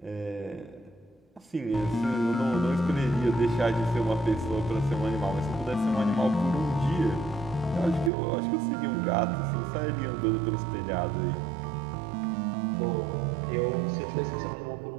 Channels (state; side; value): drops out; left; at 8.1 s